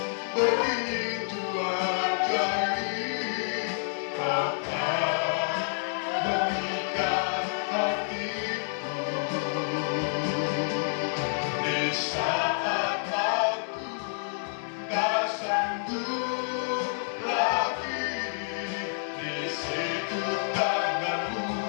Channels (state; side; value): silent; right; 59 dB below the other